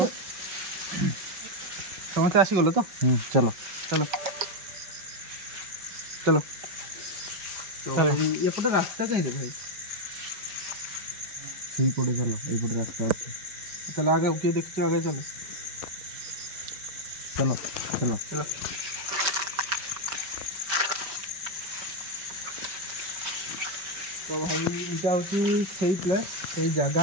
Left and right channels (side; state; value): left; late; 5.3 ms